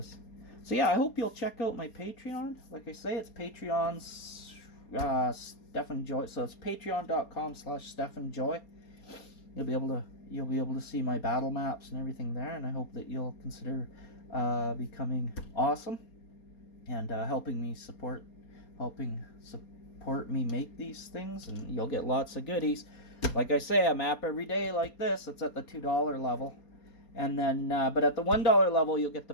So yeah, I hope you'll check out my Patreon. Like I say, it's Patreon's Stefan Joy. So it's patreon.com/StefanJoy. You'll be able to see my battle maps and everything there, and I hope that you'll consider becoming awesome and helping support me make these things, and you'll get lots of goodies. Like I say, a map every day like this. It's at the $2 level, and then but at the $1 level you'll get the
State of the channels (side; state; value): right; late; 4.3 ms